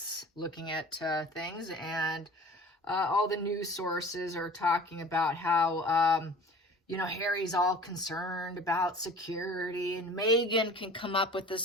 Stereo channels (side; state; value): both; normal; correlation 0.44